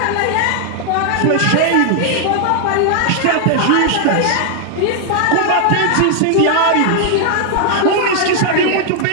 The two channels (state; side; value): different; both; correlation 0.00